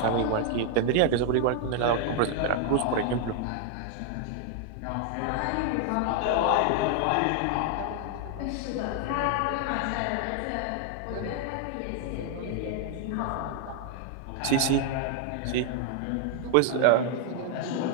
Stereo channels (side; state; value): both; different; correlation 0.00